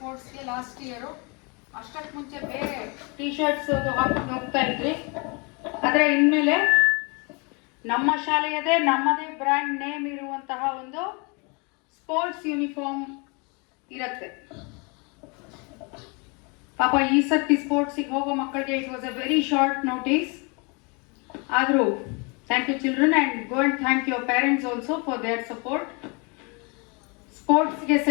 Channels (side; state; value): right; quieter; 31.5 dB